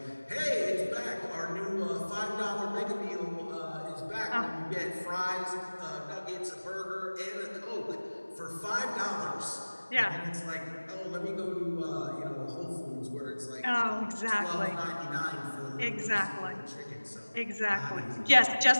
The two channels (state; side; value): inverted; both; correlation -1.00